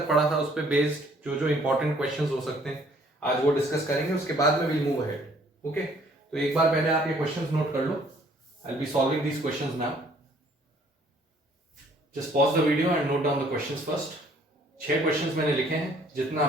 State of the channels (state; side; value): normal; both; correlation 0.60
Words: पढ़ा था उस पे बेस्ड जो जो इंपॉर्टेंट क्वेश्चंस हो सकते हैं आज वो डिस्कस करेंगे। उसके बाद में विल मूव अहेड। ओके, तो एक बार पहले आप ये क्वेश्चंस नोट कर लो। I will be solving these questions now. Just pause the video and note down the questions first. 6 questions मैंने लिखे हैं, जितना